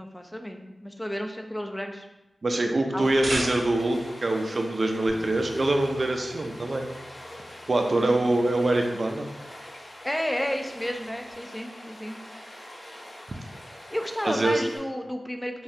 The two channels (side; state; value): both; normal; correlation 0.96